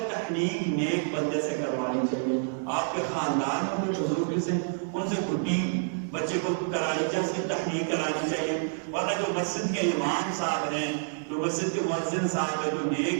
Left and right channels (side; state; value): left; silent; digital silence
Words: تحنیک نیک بندے سے کروانی چاہیے، آپ کے خاندان میں کوئی بزرگ سے ان سے گھٹی بچے کو کرانی چاہیے، اس کی تحنیک کرانی چاہیے، ورنہ جو مسجد کے امام صاحب ہیں، جو مسجد کے مؤذن صاحب ہیں، جو